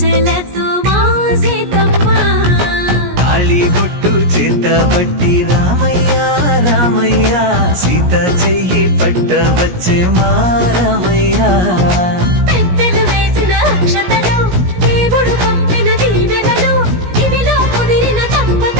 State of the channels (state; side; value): late; left; 17 ms